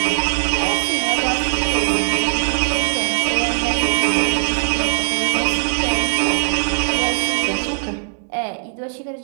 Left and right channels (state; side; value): silent; left; digital silence